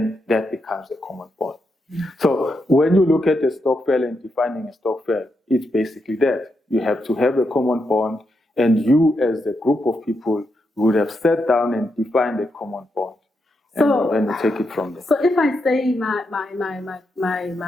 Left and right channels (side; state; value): both; normal; correlation 0.83